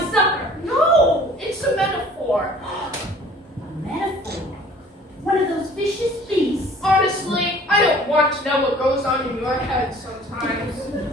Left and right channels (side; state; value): both; normal; correlation 0.51